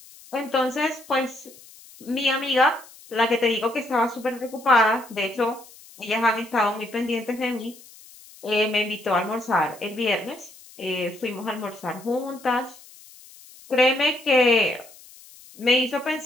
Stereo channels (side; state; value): left; noise; hiss, 22 dB below the sound